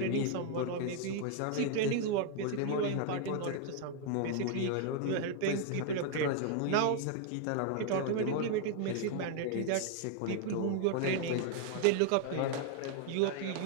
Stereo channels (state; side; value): different; both; correlation 0.00